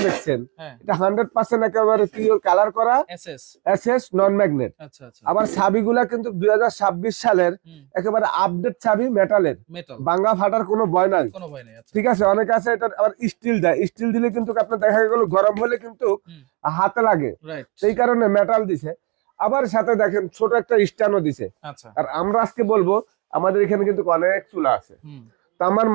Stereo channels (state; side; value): quieter; left; 29.7 dB